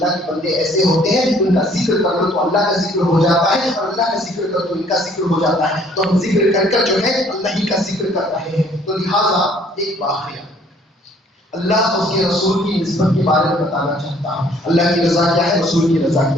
کے بندے ایسے ہوتے ہیں ان کا ذکر کر لو تو اللہ کا ذکر ہو جاتا ہے، اور اللہ کا ذکر کرو تو ان کا ذکر ہو جاتا ہے. تو ہم ذکر کر کر جو ہے اللہ ہی کا ذکر کر رہے ہیں. تو لہٰذا ایک واقعہ اللہ اور اس کے رسول کی نسبت کے بارے میں بتانا چاہتا ہوں. اللہ کی رضا کیا ہے، رسول کی رضا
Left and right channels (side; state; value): both; normal; correlation 0.60